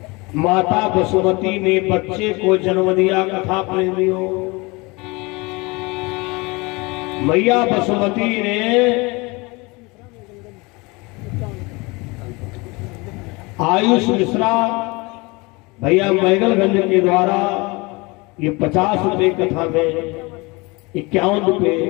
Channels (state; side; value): quieter; right; 25.7 dB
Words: माता वसुमती ने बच्चे को जन्म दिया। कथा प्रेमियों, मैया वसुमती ने आयुष मिश्रा भैया मैगलगंज के द्वारा ये 50 रुपए कथा में 51 रुपए